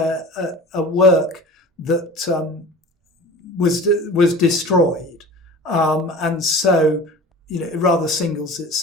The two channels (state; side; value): normal; both; correlation 0.39